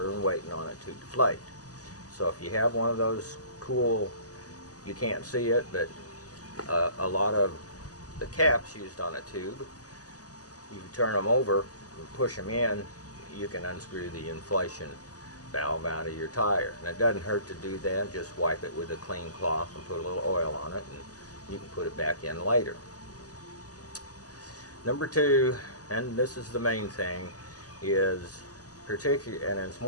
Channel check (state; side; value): late; right; 0.67 ms